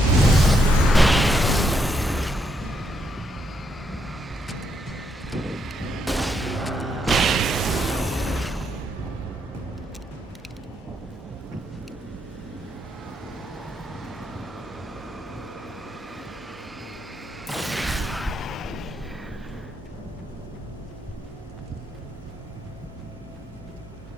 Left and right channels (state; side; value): normal; both; correlation 0.77